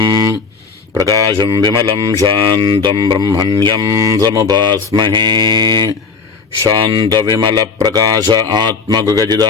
प्रकाशं विमलं शान्तं ब्रह्मण्यं समुपास्महे। शान्तविमलप्रकाश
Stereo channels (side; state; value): right; quieter; 5.0 dB